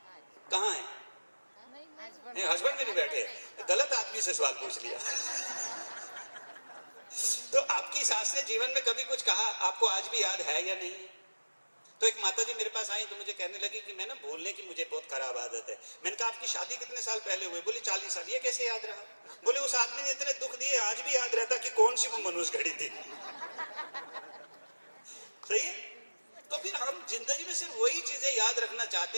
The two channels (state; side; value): inverted; both; correlation -1.00